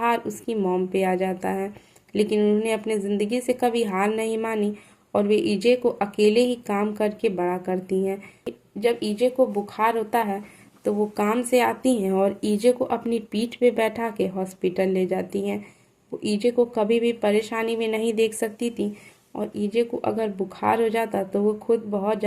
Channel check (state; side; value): identical; both; correlation 1.00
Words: उसकी मॉम पे आ जाता है। लेकिन उन्होंने अपने ज़िंदगी से कभी हार नहीं मानी और वे ईजे को अकेले ही काम करके बड़ा करती हैं। जब ईजे को बुखार होता है तो वो काम से आती हैं और ईजे को अपनी पीठ पे बैठा के हॉस्पिटल ले जाती हैं। वो ईजे को कभी भी परेशानी में नहीं देख सकती थी और ईजे को अगर बुखार हो जाता तो वो खुद बहुत